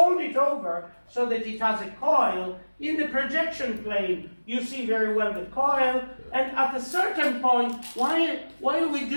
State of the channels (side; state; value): both; inverted; correlation -1.00